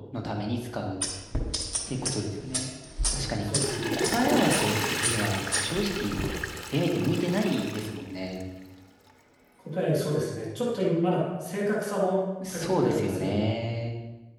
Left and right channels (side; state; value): both; identical; correlation 1.00